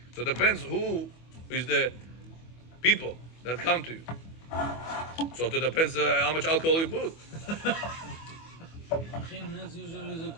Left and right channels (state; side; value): late; right; 25 ms